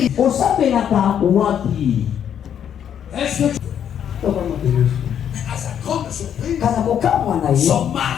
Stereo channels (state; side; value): quieter; right; 9.1 dB